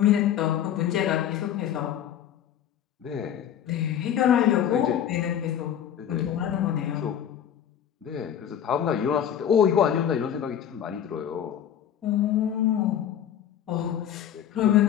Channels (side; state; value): right; quieter; 9.8 dB